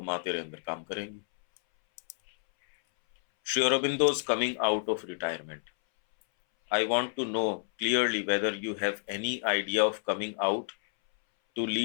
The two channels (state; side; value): silent; right; 58 dB below the other